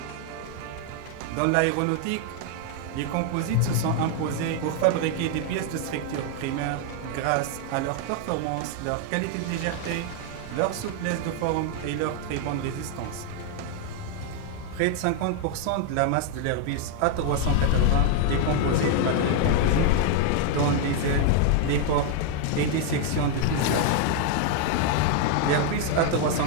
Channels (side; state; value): both; different; correlation 0.00